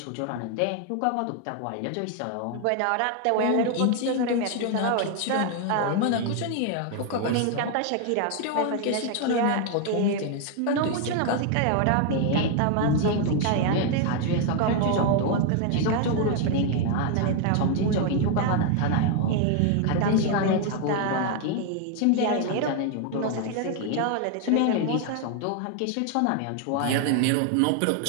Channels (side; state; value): both; different; correlation 0.00